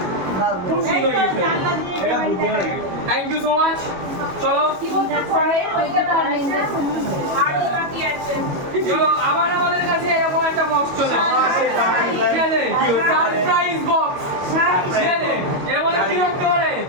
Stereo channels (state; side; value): late; left; 22 ms